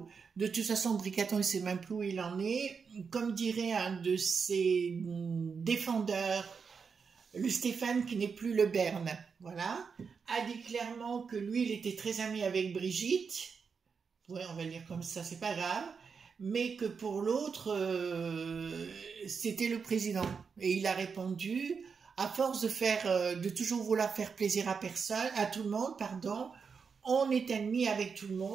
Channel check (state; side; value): quieter; left; 5.7 dB